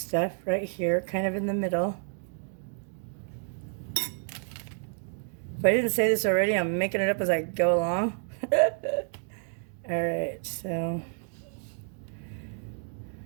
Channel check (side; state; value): left; silent; 58 dB below the other